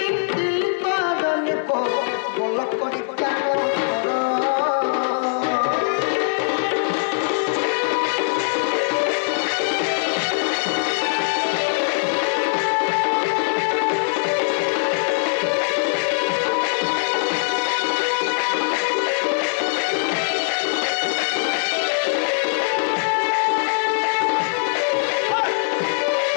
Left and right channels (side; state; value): right; silent; digital silence